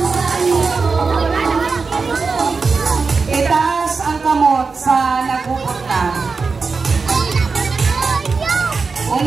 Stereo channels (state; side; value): quieter; left; 4.6 dB